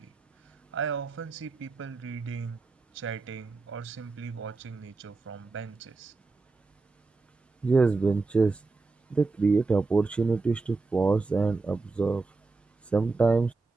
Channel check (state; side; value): quieter; left; 3.8 dB